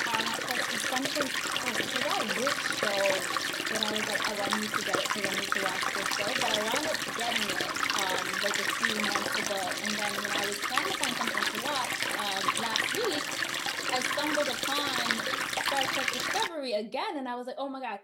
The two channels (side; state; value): both; identical; correlation 1.00